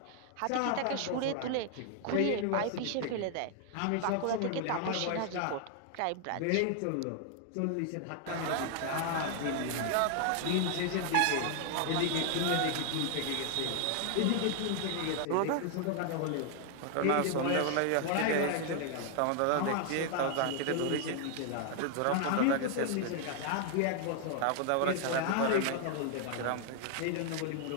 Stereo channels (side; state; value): both; different; correlation 0.00